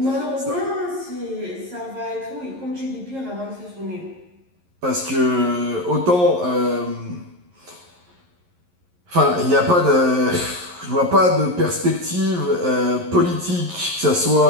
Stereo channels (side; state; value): left; late; 11 ms